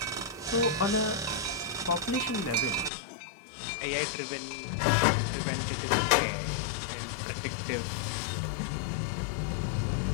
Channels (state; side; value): drops out; right; at 2.9 s